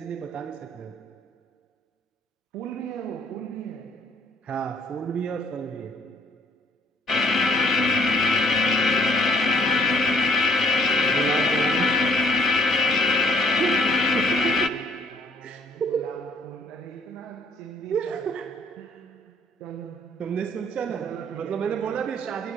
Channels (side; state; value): both; normal; correlation 0.61